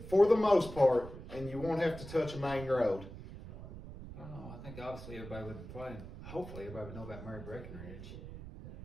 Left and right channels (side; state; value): right; noise; rumble, 12 dB below the sound